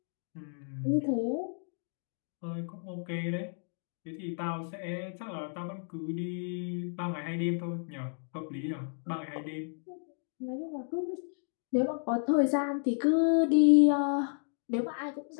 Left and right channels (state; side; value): silent; right; 56 dB below the other